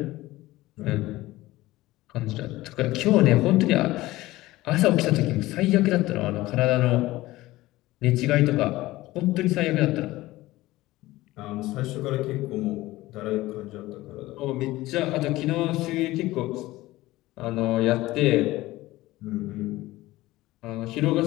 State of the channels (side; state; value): right; quieter; 17.9 dB